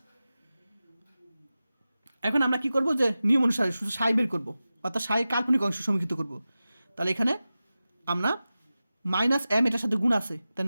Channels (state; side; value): inverted; both; correlation -0.95